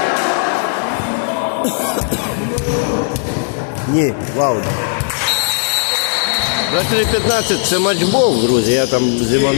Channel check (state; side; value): silent; right; digital silence